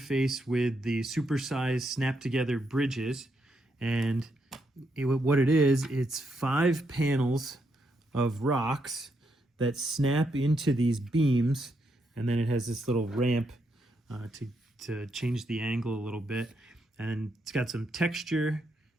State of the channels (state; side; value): normal; both; correlation 0.79